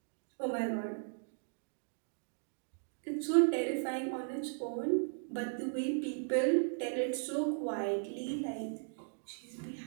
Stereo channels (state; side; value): silent; left; digital silence